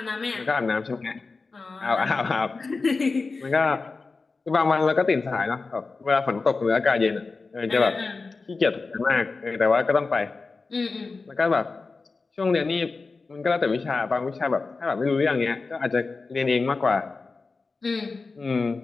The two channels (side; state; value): right; quieter; 4.1 dB